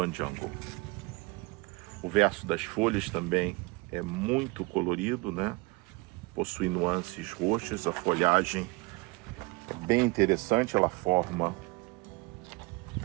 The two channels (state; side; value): quieter; left; 25.4 dB